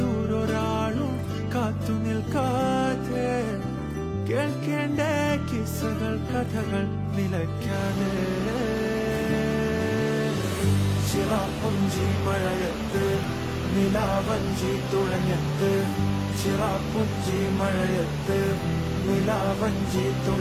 കാത്തു നിൽക്കാതെ കേൾക്കേണ്ട കിസ്സകൾ കഥകൾ നിലയ്ക്കാതെ ചിറാപ്പുഞ്ചി മഴയത്ത് നിലാവഞ്ചി തുഴഞ്ഞത്ത് ചിറാപ്പുഞ്ചി മഴയത്ത് നിലാവഞ്ചി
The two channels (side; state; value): both; identical; correlation 1.00